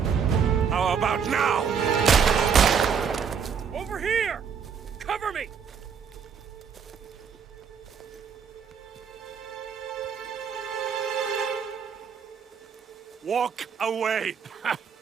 How about now? Over here! Cover me! Walk away!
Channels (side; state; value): left; quieter; 6.8 dB